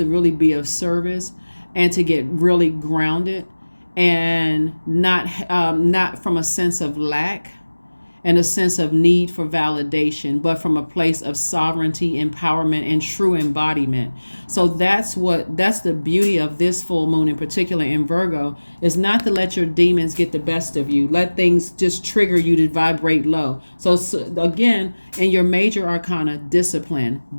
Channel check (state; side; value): inverted; both; correlation -1.00